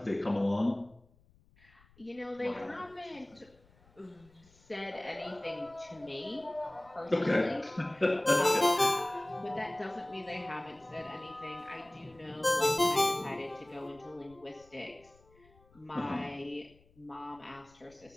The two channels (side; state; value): left; noise; rumble, 29 dB below the sound